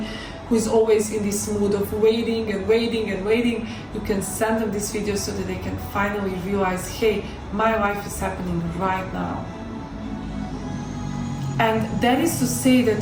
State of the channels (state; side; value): identical; both; correlation 1.00